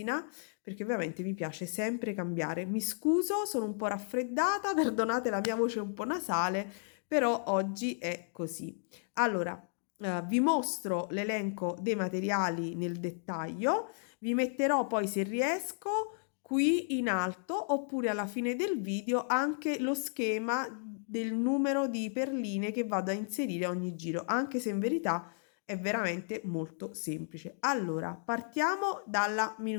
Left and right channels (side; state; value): right; silent; digital silence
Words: perché ovviamente mi piace sempre cambiare. Mi scuso, sono un po' raffreddata, perdonate la mia voce un po' nasale, però oggi è così. Allora, vi mostro l'elenco dei materiali nel dettaglio. Vi metterò poi, se riesco, qui in alto oppure alla fine del video anche lo schema del numero di perline che vado a inserire a ogni giro, anche se in verità è veramente molto semplice. Allora, partiamo dalla